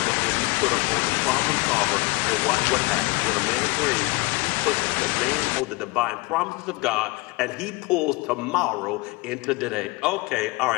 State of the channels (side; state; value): right; quieter; 24.9 dB